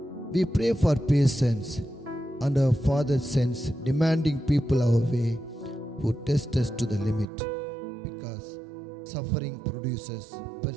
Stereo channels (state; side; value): drops out; left; at 7.2 s